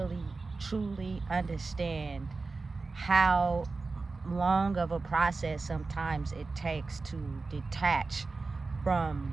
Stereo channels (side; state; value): left; quieter; 3.9 dB